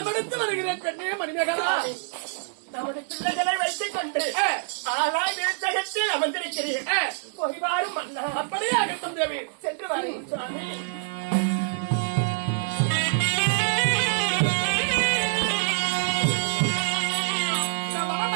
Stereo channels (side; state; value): left; silent; 61 dB below the other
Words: வருகிறேன். பெண்ணே மணிமேகலா, நமது பிள்ளைகளை வைத்துக் கொண்டு ஆளாய் விருச்சகத்தில் அமர்ந்திருக்கிறீர்கள். போய்வாரும் மன்னா. அப்படியே அகட்டும் தேவி, சென்று வாருங்கள் சுவாமி.